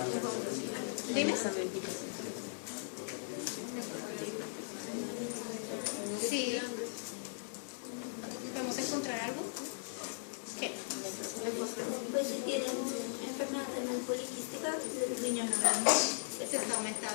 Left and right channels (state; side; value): silent; right; 52 dB below the other